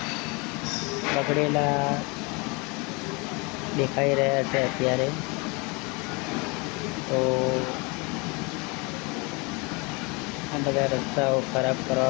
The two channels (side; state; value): right; quieter; 28.8 dB